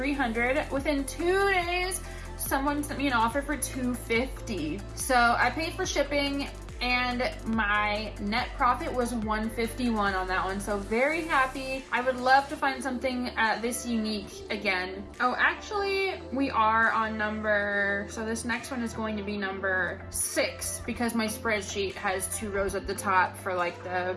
Within 2 days, someone sent me an offer for $250. So I paid for shipping, and my net profit was $151 on that one. So very happy. I would love to find something this unique again. Oh, actually, we are on number, so this next one is going to be number 6 because my spreadsheet has 2 rows at the top for like the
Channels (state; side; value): identical; both; correlation 1.00